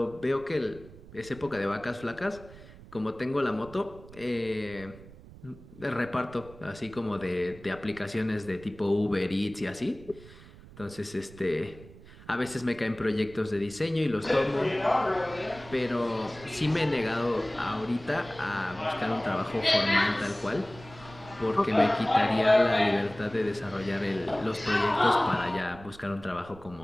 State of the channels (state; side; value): noise; right; rumble, 19 dB below the sound